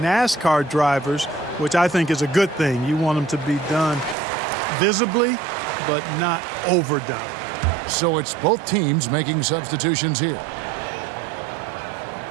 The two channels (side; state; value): left; drops out; at 4.2 s